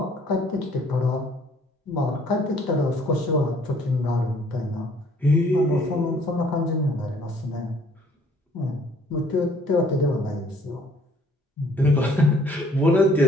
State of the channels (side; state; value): both; normal; correlation 0.60